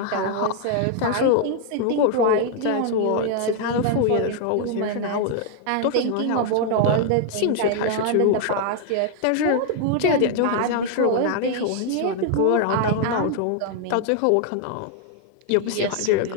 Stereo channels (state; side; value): different; both; correlation 0.00